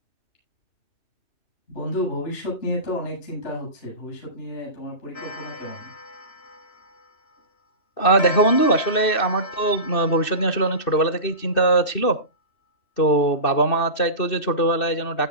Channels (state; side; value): late; right; 2.6 ms